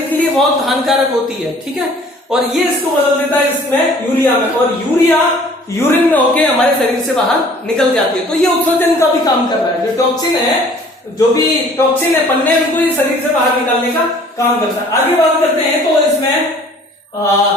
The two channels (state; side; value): normal; both; correlation 0.53